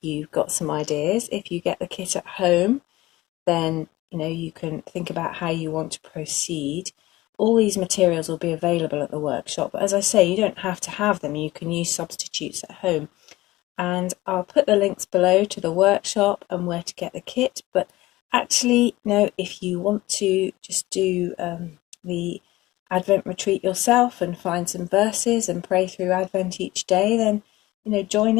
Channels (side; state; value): right; quieter; 18.4 dB